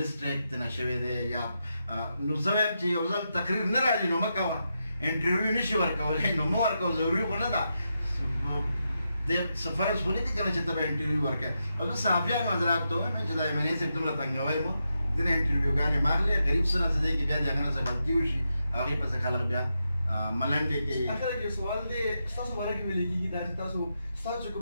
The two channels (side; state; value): both; inverted; correlation -0.86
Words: ترنه شوی دی یا نو زه وایم چې یو ځل تقریر نه راځي نو مه کوه. انټرویو نشي ورکولی نو مه ورکوه. ضروري خو نه ده د فرض خو نه دي که نه چې ته به انټرویو ورکوې. او زه صحافیان حضرات ته وایم چې دا ایم این اے صاحب دومره تنګوی مو ځینې انټرویوګانې مه اخلئ. غریب څه نه څه دی کې بیا د هغه نه څه غلطي وشي هغې پسې خلک بیا ملنډې کوي. اخر کې سوال دی ستاسو باره کې ویل کېږي دا چې ستاسو